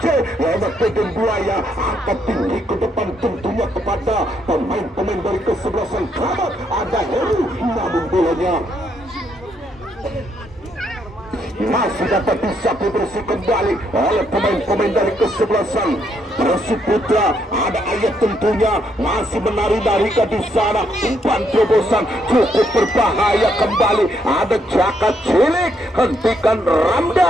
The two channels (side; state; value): both; normal; correlation 0.74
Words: lewat Deden Buaya, angkat tinggi ke depan tentunya kepada pemain-pemain dari kesebelasan Kramat. Ada Heru namun bolanya masih dapat disapu bersih kembali oleh pemain-pemain dari kesebelasan Persib Putra. Ada Ayat tentunya masih menari-nari ke di sana, umpan terobosan cukup berbahaya kembali. Ada Jaka Cilik, hentikan